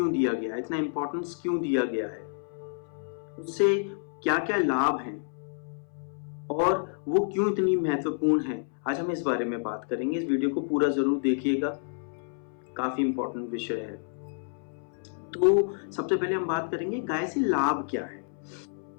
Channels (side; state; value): right; silent; 59 dB below the other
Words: दिया गया है, इतना इम्पोर्टेंस क्यों दिया गया है, उससे क्या क्या लाभ हैं और वो क्यों इतनी महत्वपूर्ण है, आज हम इस बारे में बात करेंगे। इस वीडियो को पूरा जरूर देखिएगा, काफी इम्पोर्टेंट विषय है। तो सबसे पहले हम बात करेंगे गाय से लाभ क्या है।